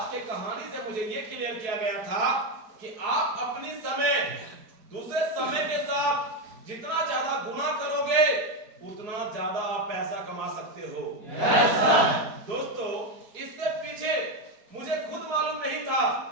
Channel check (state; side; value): late; left; 4.7 ms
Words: के कहानी से मुझे ये क्लियर किया गया था कि आप अपनी समय दूसरे समय के साथ जितना ज्यादा गुना करोगे उतना ज्यादा आप पैसा कमा सकते हो। दोस्तों इससे पीछे मुझे खुद मालूम नहीं था